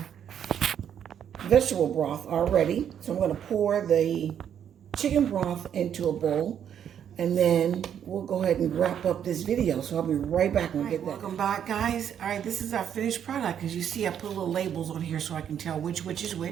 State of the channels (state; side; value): quieter; left; 9.0 dB